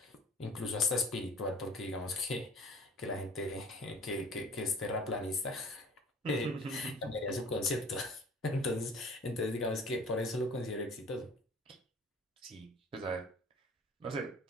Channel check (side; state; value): both; normal; correlation 0.48